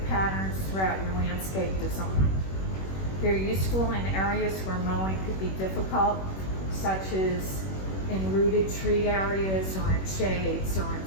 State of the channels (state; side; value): late; right; 21 ms